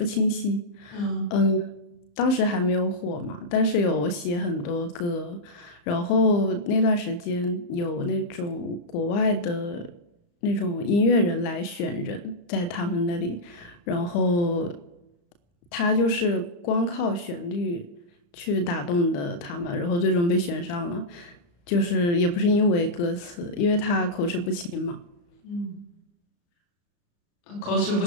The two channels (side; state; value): right; late; 34 ms